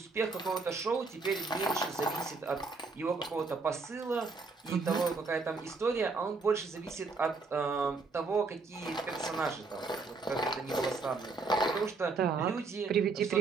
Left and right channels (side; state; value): left; quieter; 4.1 dB